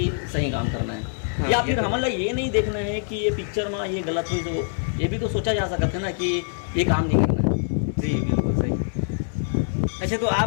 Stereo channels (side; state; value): right; silent; 62 dB below the other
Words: सही काम करना है। हाँ, या फिर तो हमारा ये नहीं देखना है कि ये पिक्चर में ये गलत हुई, तो ये भी तो सोचा जा सकता है ना कि ये काम नहीं करना है। जी, बिल्कुल सही। अच्छा, तो